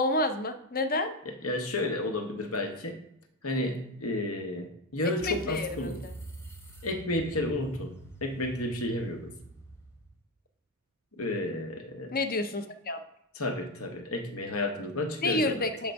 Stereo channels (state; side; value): normal; both; correlation 0.14